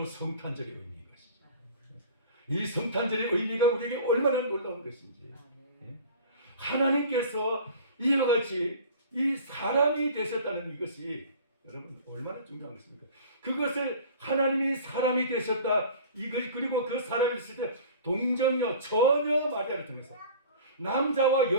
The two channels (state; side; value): inverted; both; correlation -0.42